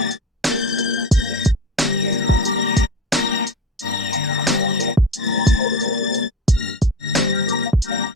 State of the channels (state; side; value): normal; both; correlation 0.29